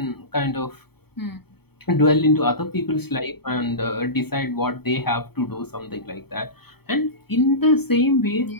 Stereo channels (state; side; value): late; right; 0.96 ms